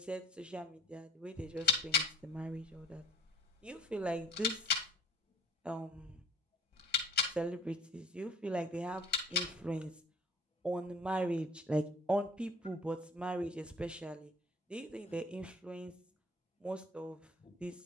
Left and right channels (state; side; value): normal; both; correlation 0.51